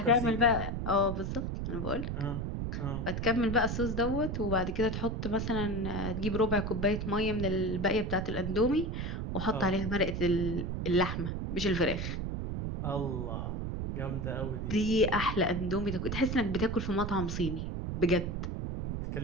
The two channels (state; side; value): noise; right; rumble, 3 dB below the sound